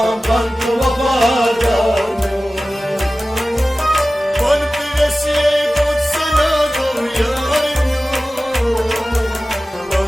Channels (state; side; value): normal; both; correlation 0.96